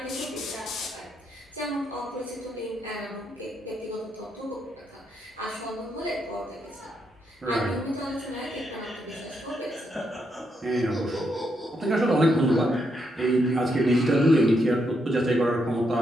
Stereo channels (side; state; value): both; normal; correlation 0.79